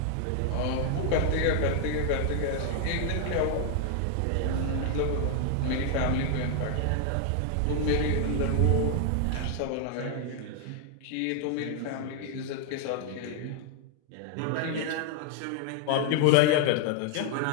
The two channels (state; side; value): different; both; correlation 0.00